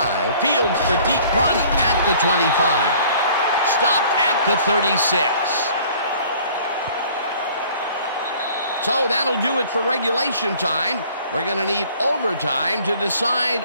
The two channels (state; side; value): inverted; both; correlation -0.53